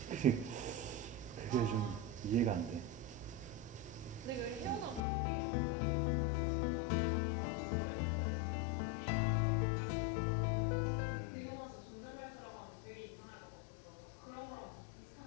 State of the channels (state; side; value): drops out; right; at 5.1 s